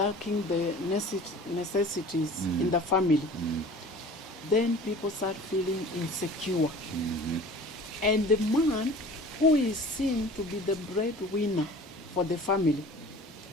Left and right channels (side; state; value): both; normal; correlation 0.43